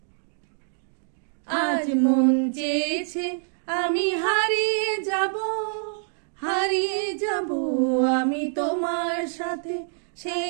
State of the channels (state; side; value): silent; left; 61 dB below the other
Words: আজ মন চেয়েছে আমি হারিয়ে যাব, হারিয়ে যাব আমি তোমার সাথে।